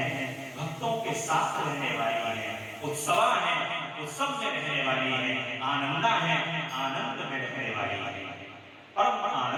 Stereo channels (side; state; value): both; identical; correlation 1.00